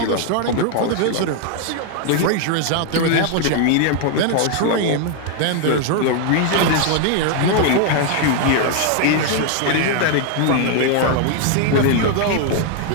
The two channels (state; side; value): different; both; correlation 0.00